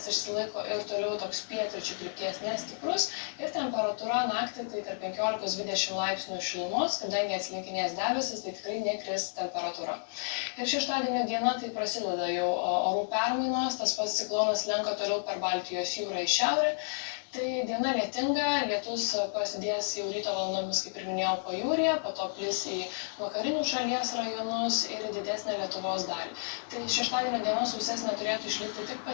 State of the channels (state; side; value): silent; right; digital silence